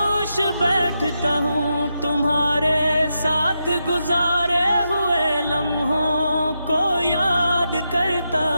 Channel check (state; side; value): inverted; both; correlation -0.85